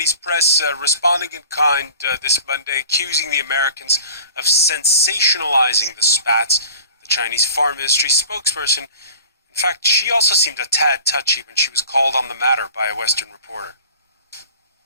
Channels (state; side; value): inverted; both; correlation -0.44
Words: press responding in kind this Monday, accusing the Americans of sensationalizing the spats. The Chinese Foreign Ministry spokesperson, in fact, she also seemed a tad touchy when she was called on the matter by a Western reporter.